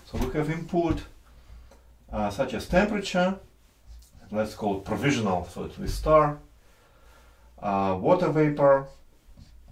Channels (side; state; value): both; identical; correlation 1.00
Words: So we have input such as temperature. Let's call it provisional, so it's with star. Water vapor,